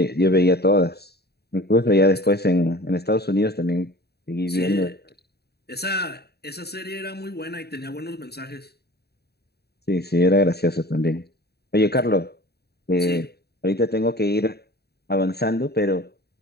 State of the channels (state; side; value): late; right; 0.47 ms